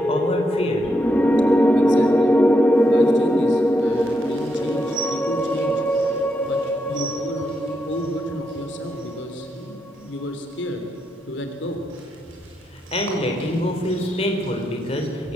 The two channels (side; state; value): both; normal; correlation 0.81